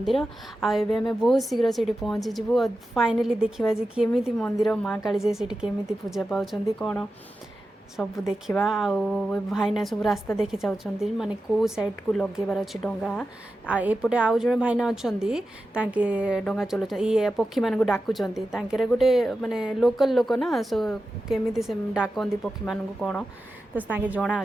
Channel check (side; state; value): both; normal; correlation 0.92